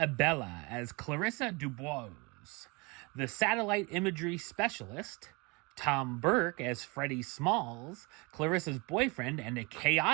as Clarissa Dubois, the satellite imagery specialist, Tom Burke as Freddie Smalls, Clarissa's boyfriend and a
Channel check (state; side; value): quieter; left; 28.0 dB